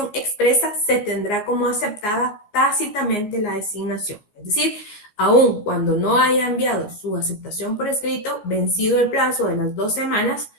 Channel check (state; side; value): late; right; 14 ms